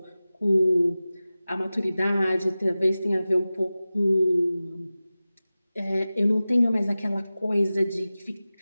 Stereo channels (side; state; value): both; inverted; correlation -0.96